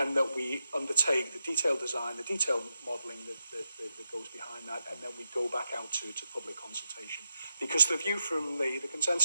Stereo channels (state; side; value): inverted; both; correlation -0.86